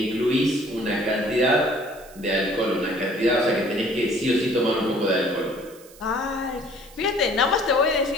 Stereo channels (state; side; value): noise; right; hiss, 23 dB below the sound